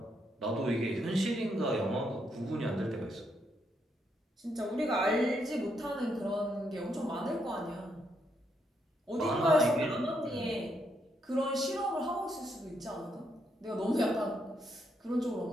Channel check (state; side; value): normal; both; correlation 0.77